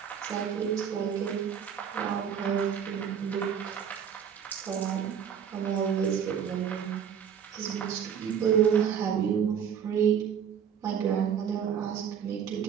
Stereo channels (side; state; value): left; quieter; 8.1 dB